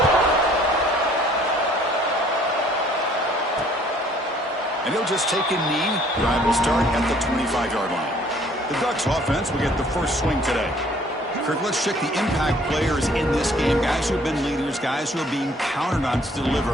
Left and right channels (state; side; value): normal; both; correlation 0.58